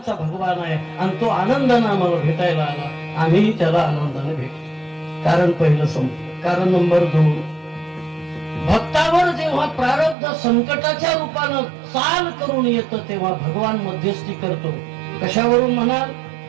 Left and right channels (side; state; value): left; drops out; at 10.2 s